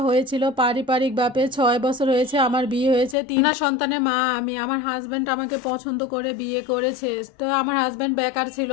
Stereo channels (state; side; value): drops out; right; at 3.2 s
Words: হয়েছিল পারিবারিক ভাবে, 6 বছর হয়েছে আমার বিয়ে হয়েছে, 3 সন্তানের মা আমি। আমার হাজব্যান্ড আমাকে পছন্দ করে বিয়ে করেছে। তো আমার হাজব্যান্ড বেকার ছিল,